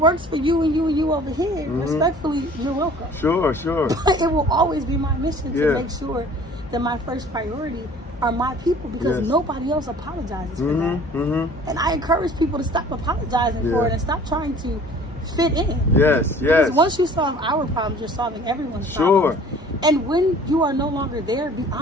for you and you and you over here, respectfully, you're welcome. Sure. But it will always be my mission to make sure that my first priority are my people, because nobody else apologizes for that. And I encourage people to stop apologizing for it and stop trying to fit in. Yes. Because once you solve our problems, you're solving everyone's problems. And when you are no longer there, be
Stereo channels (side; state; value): both; normal; correlation 0.49